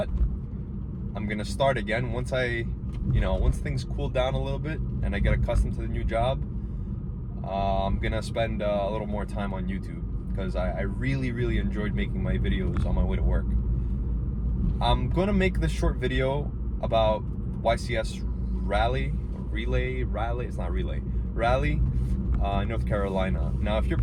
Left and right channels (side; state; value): both; identical; correlation 1.00